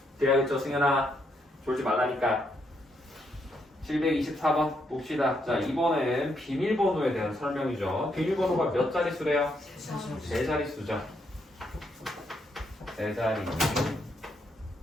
돼야겠죠. 승현아 졸지 말라니까. 724번 봅시다. 자, 이번엔 비밀번호에 대한 설명이죠. 비밀번호가 몇 자릿수래요? 세 자릿수죠. 세 자리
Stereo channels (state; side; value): normal; both; correlation 0.76